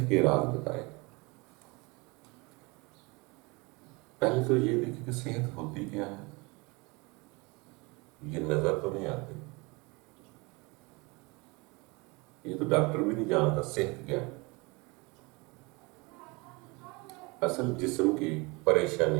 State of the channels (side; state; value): left; quieter; 26.7 dB